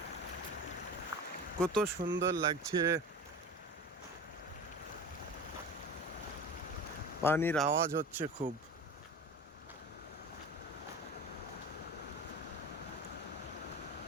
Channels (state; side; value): normal; both; correlation 0.33